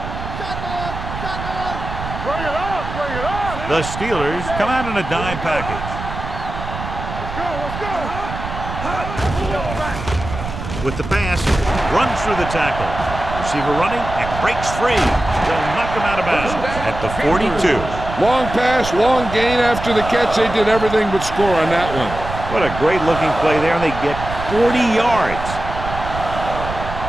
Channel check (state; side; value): noise; right; rumble, 8 dB below the sound